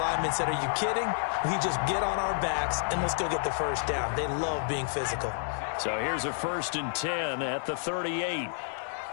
said, are you kidding? We just get on our backs and let's go get the first down. They love being physical. So here's a 1st and 10 at the 38. Right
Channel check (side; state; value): right; silent; digital silence